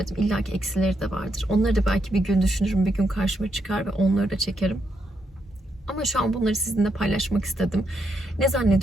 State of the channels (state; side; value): normal; both; correlation 0.79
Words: İlla ki eksileri de vardır. Onları da belki bir gün düşünürüm, bir gün karşıma çıkar ve onları da çekerim. Ama şu an bunları sizinle paylaşmak istedim. Ne